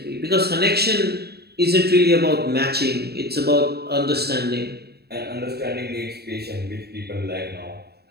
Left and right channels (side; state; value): left; late; 0.47 ms